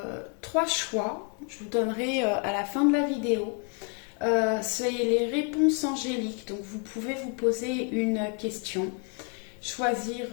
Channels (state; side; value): quieter; right; 36.7 dB